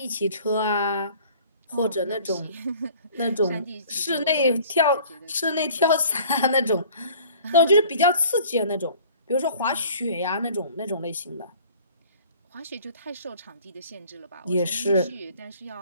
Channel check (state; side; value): inverted; both; correlation -0.50